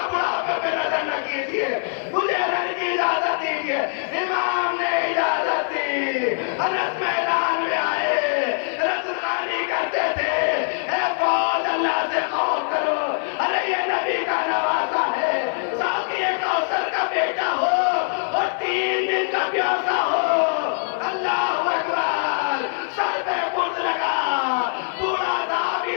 بڑھاپے پہ نظر نہ کیجیے، مجھے رن کی اجازت دیجیے. امام نے اجازت دی. انس میدان میں آئے، رزقانی کرتے تھے اے فوج اللہ سے خوف کرو. ارے یہ نبی کا نوازا ہے، ساقی کوثر کا بیٹا ہو اور 3 دن کا پیاسا ہو.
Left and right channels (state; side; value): silent; right; digital silence